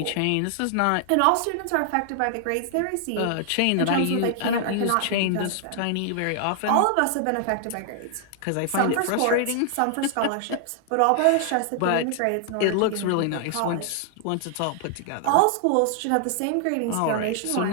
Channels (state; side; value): different; both; correlation 0.00